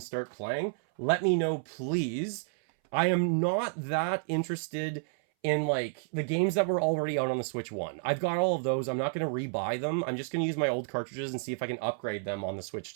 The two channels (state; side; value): silent; left; 57 dB below the other